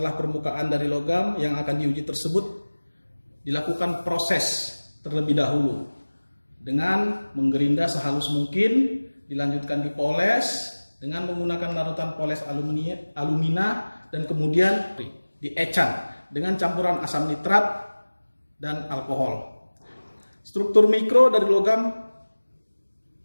permukaan dari logam yang akan diuji tersebut dilakukan proses terlebih dahulu dengan menggerinda sehalus mungkin, dilanjutkan dipoles dengan menggunakan larutan poles alumina, dan kemudian diecan dengan campuran asam nitrat dan alkohol. Struktur mikro dari logam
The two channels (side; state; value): both; inverted; correlation -1.00